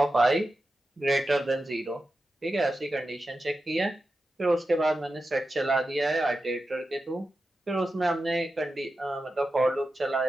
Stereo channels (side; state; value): both; normal; correlation 0.91